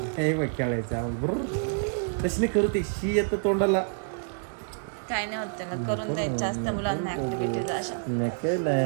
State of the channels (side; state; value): left; silent; digital silence